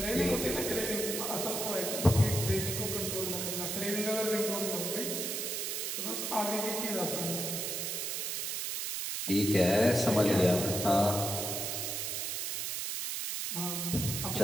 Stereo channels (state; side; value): noise; right; hiss, 2 dB below the sound